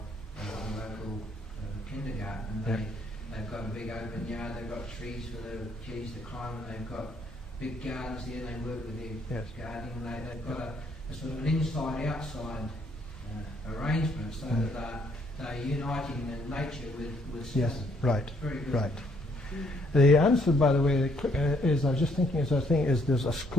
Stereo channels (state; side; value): normal; both; correlation 0.68